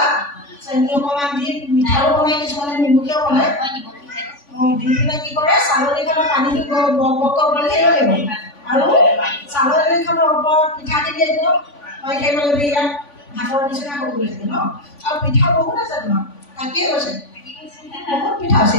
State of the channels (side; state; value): right; late; 3.5 ms